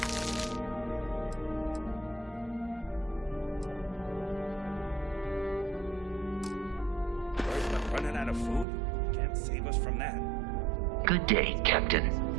Running out of food? Can't save us from that. Good day, Captain.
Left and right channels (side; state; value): left; drops out; at 8.7 s